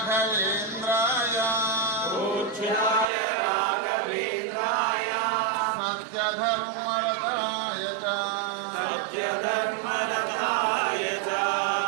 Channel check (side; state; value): left; drops out; at 3.1 s